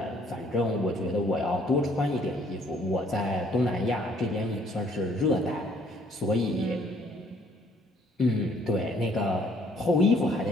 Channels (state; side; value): normal; both; correlation 0.62